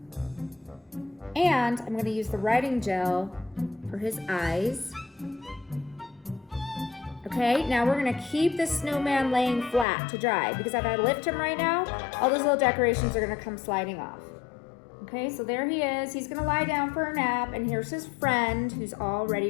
And I'm gonna use the writing gel for his eyes. Okay, now we're gonna keep this snowman laying flat to dry because if I lift him right now, all those little decorations are gonna come sliding off. Okay, so there he is. He's gonna lie down for a nap, and here's his friend who's all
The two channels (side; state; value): right; drops out; at 9.9 s